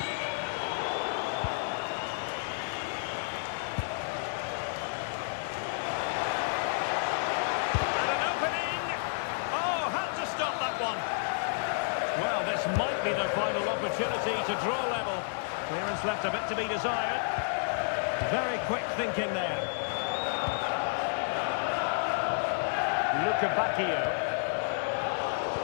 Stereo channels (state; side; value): silent; right; 57 dB below the other